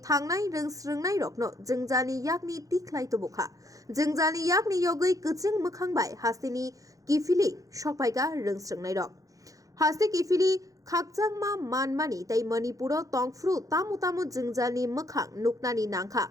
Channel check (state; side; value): late; left; 0.17 ms